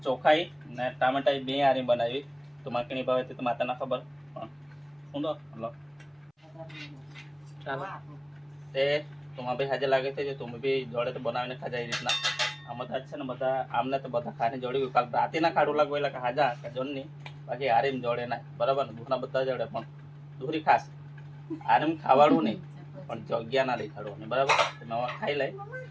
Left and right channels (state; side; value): identical; both; correlation 1.00